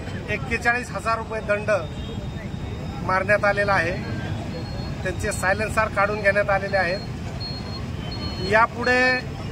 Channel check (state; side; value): identical; both; correlation 1.00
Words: 41,000 रुपये दंड मारण्यात आलेला आहे। त्यांचे सायलेन्सर काढून घेण्यात आलेले आहेत। यापुढे